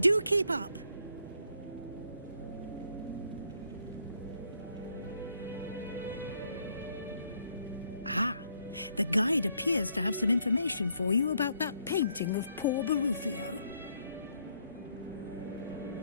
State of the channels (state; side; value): inverted; both; correlation -0.71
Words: keep up! Ah, the guide appears to have some information for you about that painting of poor Barufio.